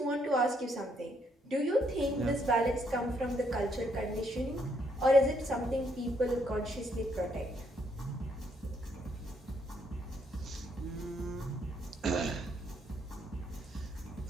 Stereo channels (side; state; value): both; normal; correlation 0.72